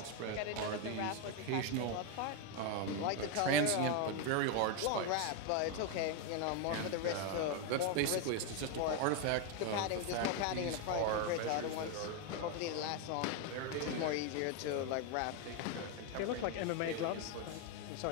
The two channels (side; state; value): both; different; correlation 0.01